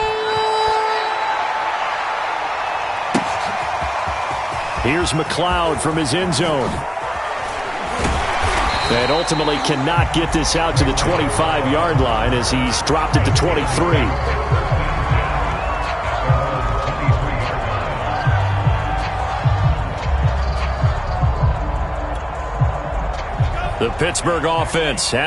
Here's McLeod from his end zone. And ultimately cannot get this out to the 25-yard line as he's dropped it to 23. The Pittsburgh offense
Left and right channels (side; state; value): both; identical; correlation 1.00